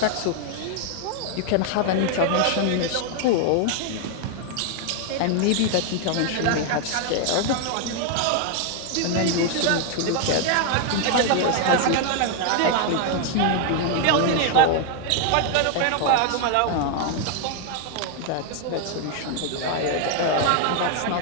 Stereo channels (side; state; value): both; different; correlation 0.00